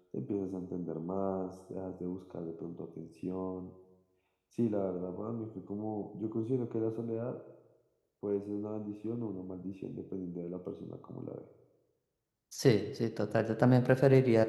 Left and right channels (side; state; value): both; identical; correlation 1.00